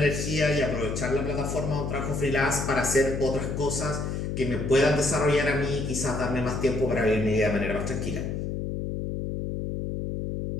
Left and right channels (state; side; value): noise; left; hum, 3 dB below the sound